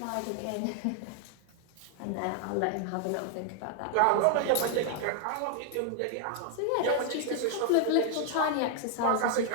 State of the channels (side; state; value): both; different; correlation 0.00